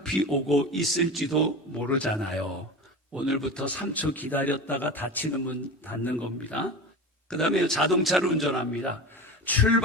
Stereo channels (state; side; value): normal; both; correlation 0.29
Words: 오고 있을지도 모르잖아요. 오늘부터 3초 기다렸다가 닫히는 문 닫는 겁니다. 그 다음에 자동차를 운전합니다.